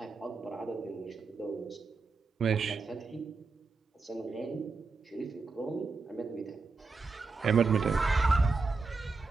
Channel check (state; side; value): quieter; left; 4.1 dB